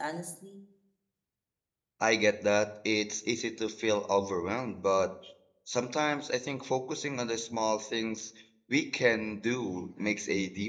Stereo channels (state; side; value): identical; both; correlation 1.00